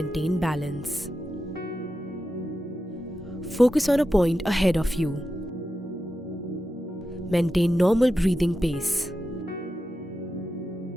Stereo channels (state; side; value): normal; both; correlation 0.90